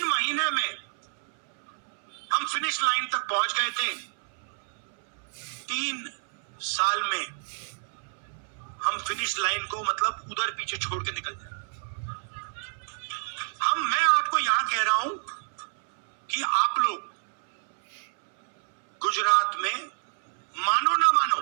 महीने में हम फिनिश लाइन तक पहुंच गए थे। 3 साल में हम फिनिश लाइन को मतलब उधर पीछे छोड़ के निकल जाए। मैं आपको यहां कह रहा हूं कि आप लोग गुजरात में मानो ना मानो,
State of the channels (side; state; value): left; silent; 59 dB below the other